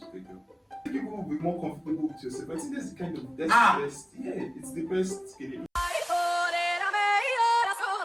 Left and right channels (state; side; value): identical; both; correlation 1.00